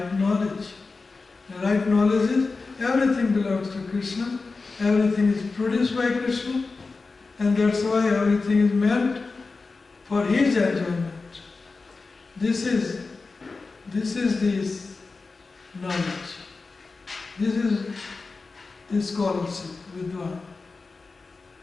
knowledge. The right knowledge is everything belongs to Krishna, everything is produced by Krishna, and that's why everything is meant for His enjoyment. This is this knowledge. This is the scholarship, Vidwan.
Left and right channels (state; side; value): quieter; right; 4.0 dB